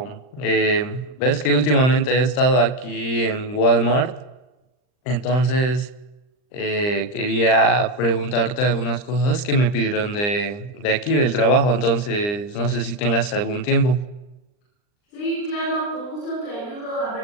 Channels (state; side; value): late; right; 39 ms